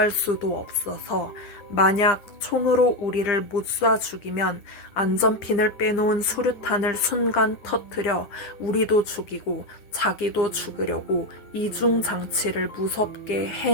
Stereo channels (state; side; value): late; right; 9.4 ms